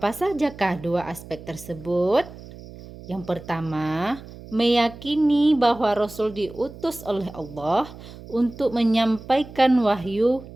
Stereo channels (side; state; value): right; noise; hum, 16 dB below the sound